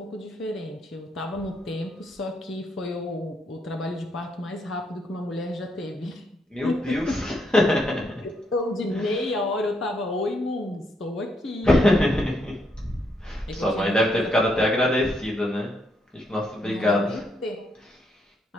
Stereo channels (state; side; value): normal; both; correlation 0.76